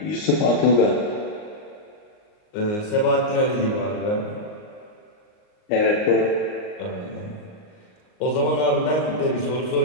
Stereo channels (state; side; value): late; right; 38 ms